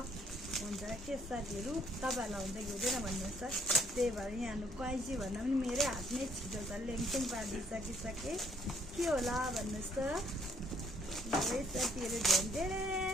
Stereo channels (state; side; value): normal; both; correlation 0.66